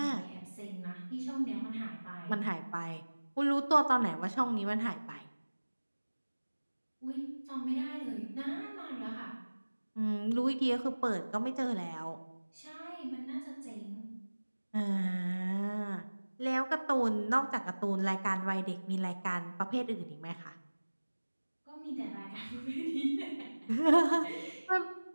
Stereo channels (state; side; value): inverted; both; correlation -1.00